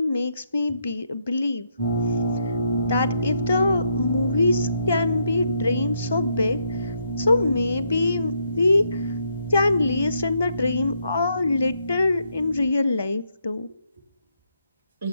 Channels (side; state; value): both; inverted; correlation -0.77